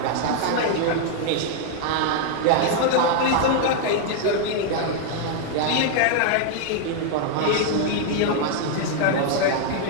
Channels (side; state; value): both; different; correlation 0.00